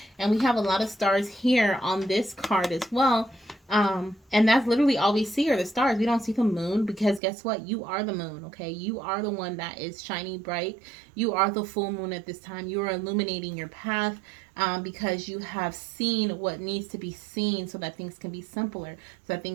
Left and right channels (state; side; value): drops out; left; at 7.2 s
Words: and we have a lot of stars here on this card as well. And that's literally all we see are the stars. We don't see the moon, because guess what? You are the moon, okay? You are the one that is shining bright. You are the full moon at this time. You are illuminating your path, because you have seen what needs to be seen so that things can be simpler, so that